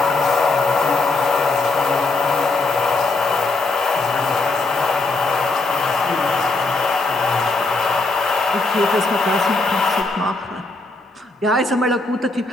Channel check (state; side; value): quieter; right; 3.3 dB